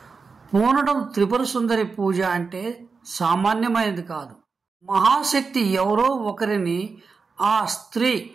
పూనడం త్రిపుర సుందరి పూజ అంటే సామాన్యమైనది కాదు. మహాశక్తి ఎవరో ఒకరిని ఆ స్త్రీ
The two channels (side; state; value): left; quieter; 4.8 dB